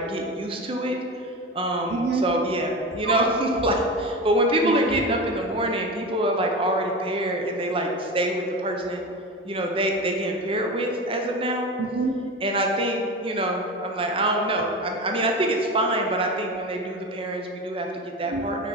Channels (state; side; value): normal; both; correlation 0.25